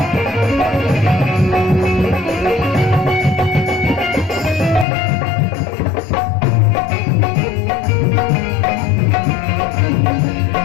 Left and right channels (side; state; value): right; drops out; at 4.9 s